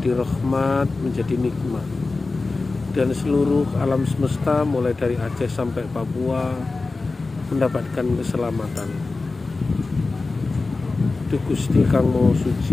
rahmat, menjadi nikmat, dan seluruh alam semesta mulai dari Aceh sampai Papua mendapatkan keselamatan. Duh Gusti Kang Maha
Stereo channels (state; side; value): quieter; right; 3.7 dB